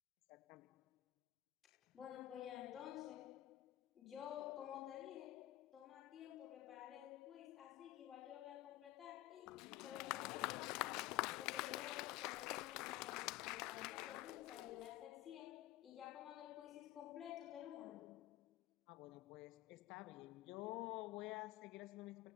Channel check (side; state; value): right; quieter; 16.1 dB